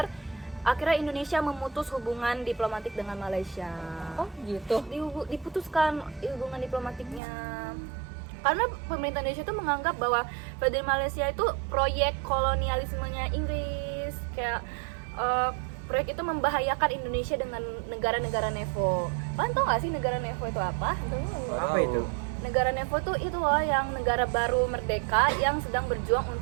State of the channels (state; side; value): drops out; left; at 7.2 s